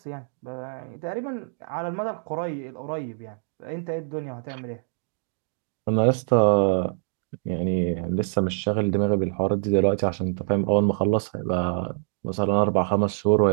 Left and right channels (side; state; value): left; silent; digital silence